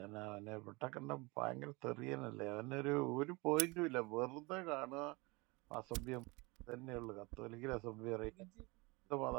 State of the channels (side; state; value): left; quieter; 25.8 dB